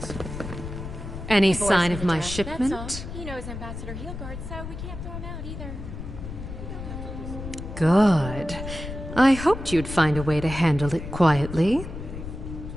Any Boys sign in of the my dark, shipment? That's all. He knows Ambassador Heelguard, so we can't throw him out either. Good. I hoped you'd find a way to handle it quietly.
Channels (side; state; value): left; noise; rumble, 9 dB below the sound